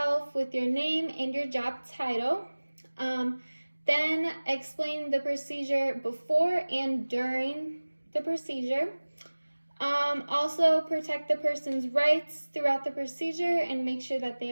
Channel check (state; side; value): inverted; both; correlation -1.00